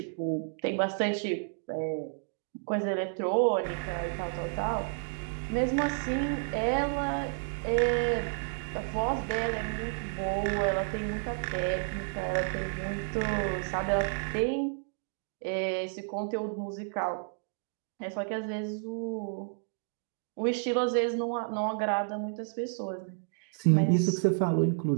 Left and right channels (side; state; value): left; silent; digital silence